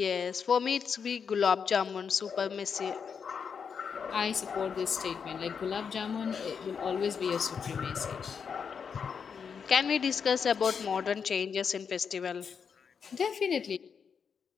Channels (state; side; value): quieter; right; 6.5 dB